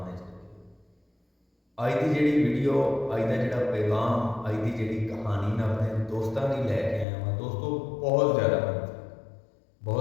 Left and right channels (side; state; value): right; drops out; at 7.1 s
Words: विच रखे। अज की जिहड़ी वीडियो, अज का जिहड़ा पैगाम, अज की जिहड़ी कहानी मैं अपने दोस्तों की लैके आया हूँ। दोस्तों बहुत ज़्यादा